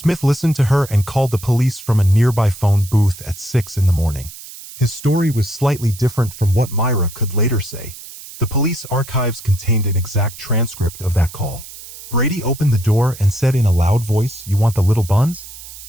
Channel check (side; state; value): right; noise; hiss, 15 dB below the sound